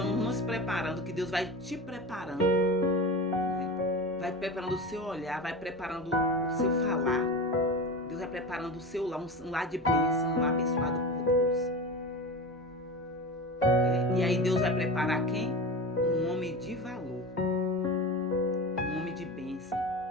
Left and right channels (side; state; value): both; normal; correlation 0.28